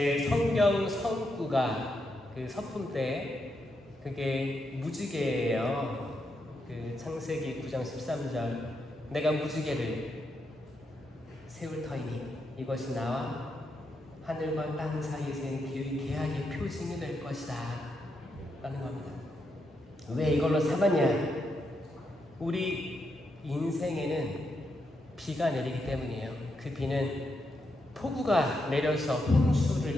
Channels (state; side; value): normal; both; correlation 0.82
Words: 성경 성구가 그 서품 때 그게 무지개예요. 그 창세기 9장 13절 내가 무지개를 세울 터이니 이것이 나와 하늘과 땅 사이에 센 기의 계약의 표징이 될 것이다 라는 겁니다. 왜 이걸로 삼았냐? 우리 인생에는 비가 내리기 때문이에요. 그 비는 폭우가 내려서 홍수를